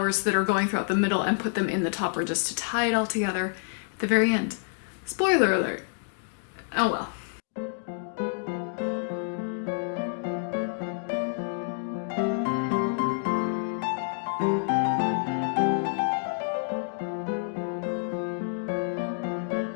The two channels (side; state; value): right; silent; digital silence